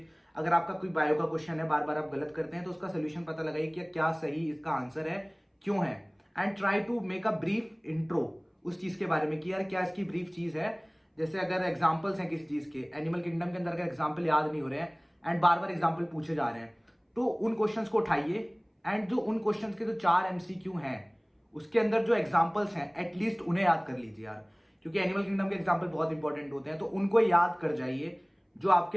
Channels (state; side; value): identical; both; correlation 1.00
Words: अगर आपका कोई बायो का क्वेश्चन है बार बार आप गलत करते हैं तो उसका सोल्यूशन पता लगाइए कि क्या सही इसका आंसर है, क्यों है, and try to make a brief intro उस चीज के बारे में कि यार क्या इसकी ब्रीफ चीज है। जैसे अगर एग्जाम्पल्स हैं किसी चीज के, एनिमल किंगडम के अंदर अगर एग्जाम्पल याद नहीं हो रहे हैं एंड बार बार एग्जाम्पल पूछे जा रहे हैं, तो उन क्वेश्चंस को उठाइए एंड जो उन क्वेश्चंस के जो 4 MCQ हैं उसके अंदर जो एग्जाम्पल्स हैं एटलीस्ट उन्हें याद कर लीजिए यार, क्योंकि एनिमल किंगडम के एग्जाम्पल बहुत इंपॉर्टेंट होते हैं। तो उनको याद कर जाइए जो